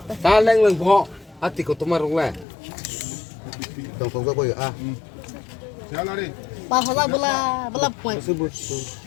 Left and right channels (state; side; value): drops out; right; at 2.5 s